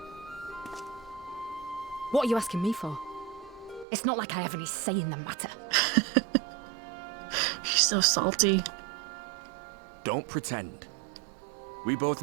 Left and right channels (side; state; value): left; drops out; at 3.9 s